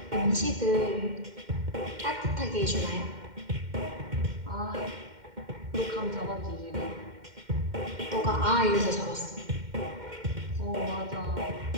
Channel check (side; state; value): left; late; 2.1 ms